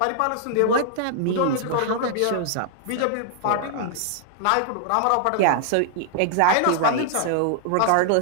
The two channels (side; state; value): both; different; correlation -0.01